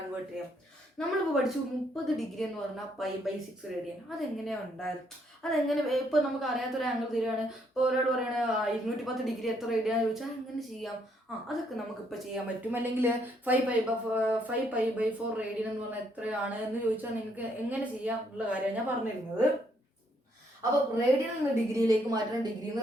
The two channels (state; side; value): normal; both; correlation 0.71